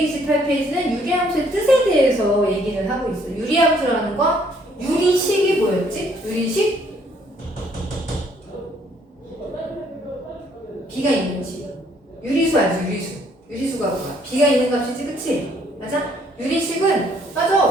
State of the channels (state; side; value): normal; both; correlation 0.65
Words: 유리함수의 뜻에 대해서 얘기를 하고 있어. 유리함수라는 건 유리식이 뭐였지? 유리식? 비가 있는 식. 유리수 알지? 유리수. 유리수가 뭐야? 비가 있는 값이지, 그치? 맞아? 유리식은